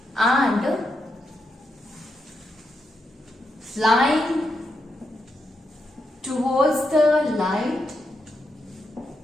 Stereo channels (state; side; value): normal; both; correlation 0.83